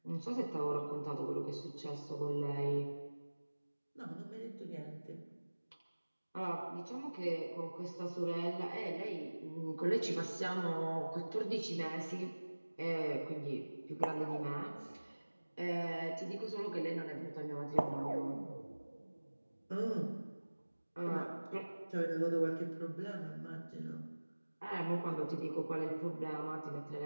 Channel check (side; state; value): both; inverted; correlation -1.00